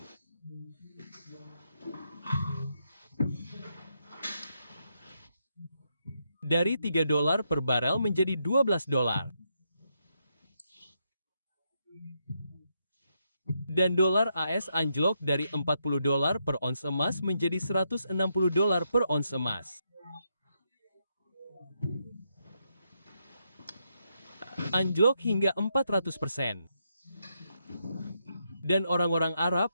Dari 3 dolar per barel menjadi 12 dolar. Dan dolar AS anjlok dari 40 dolar per ons emas menjadi 160 dolar per ons emas. Anjlok hingga 400%. Dan orang-orang Arab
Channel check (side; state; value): both; inverted; correlation -0.80